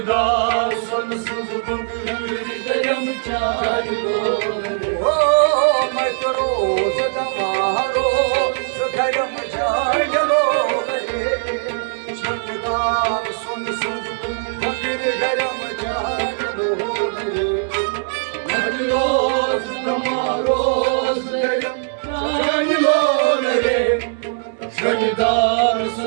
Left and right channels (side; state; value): left; silent; digital silence